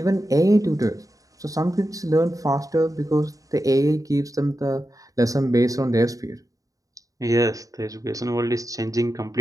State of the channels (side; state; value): left; late; 0.17 ms